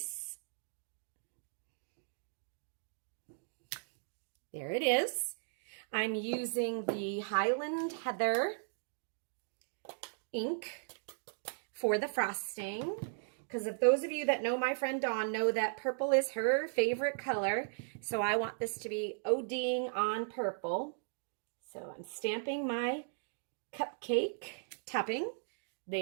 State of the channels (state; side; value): silent; left; digital silence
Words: There it is. I'm using the Highland Heather ink for the frosting, because if those of you that know my friend Dawn know that purple is her favorite color, so I want this to be ODing on purple. So I'm stamping my cupcake topping.